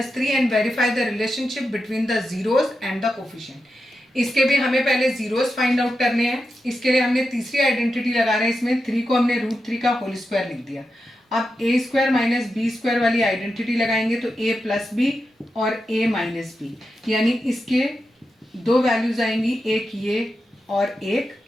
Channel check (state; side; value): normal; both; correlation 0.89